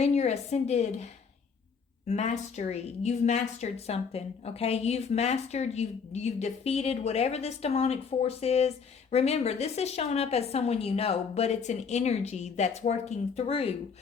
your ascended mastery. You've mastered something. Okay, you've defeated whatever this demonic force is. Remember, this is showing up as someone you know, but it's an energy that's working through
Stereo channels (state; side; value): quieter; right; 5.9 dB